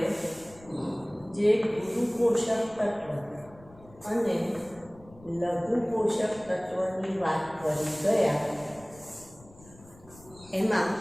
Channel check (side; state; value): left; noise; rumble, 23 dB below the sound